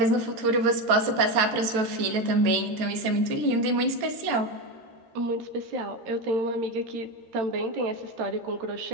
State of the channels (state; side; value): late; left; 14 ms